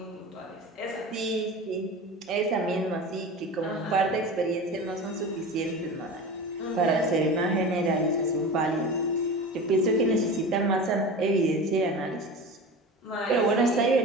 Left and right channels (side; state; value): both; normal; correlation 0.31